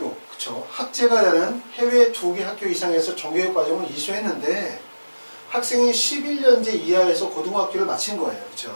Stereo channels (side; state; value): both; inverted; correlation -1.00